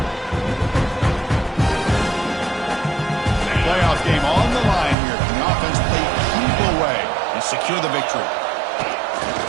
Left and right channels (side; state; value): left; drops out; at 5.0 s